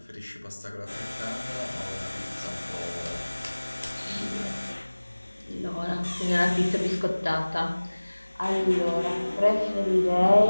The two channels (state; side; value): inverted; both; correlation -1.00